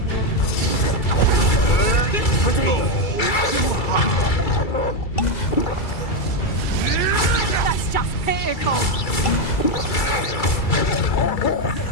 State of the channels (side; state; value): right; late; 2.3 ms